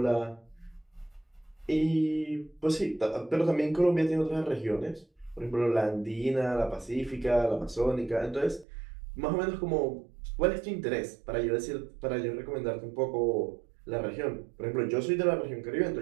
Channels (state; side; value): drops out; left; at 8.7 s